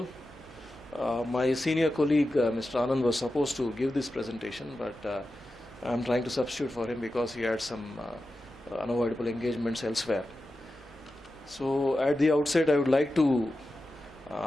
My senior colleague Mr. Anand was supposed to give this presentation, but I'm trying to substitute for him because he had some unavoidable engagements elsewhere. So at the outset I would like to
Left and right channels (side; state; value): both; normal; correlation 0.92